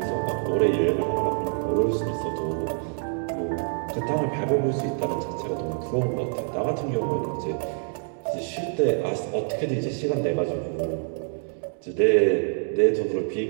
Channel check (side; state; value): left; silent; 61 dB below the other